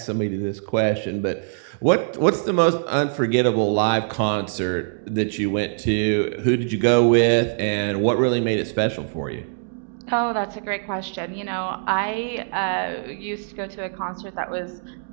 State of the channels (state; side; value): silent; left; digital silence